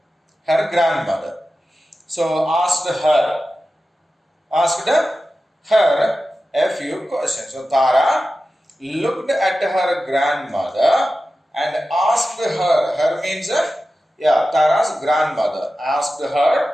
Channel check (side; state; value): both; normal; correlation 0.94